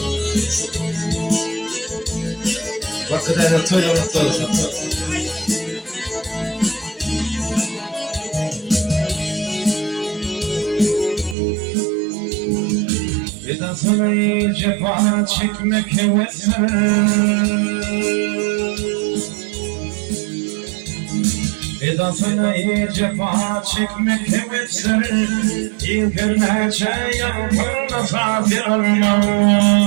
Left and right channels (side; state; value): left; drops out; at 11.4 s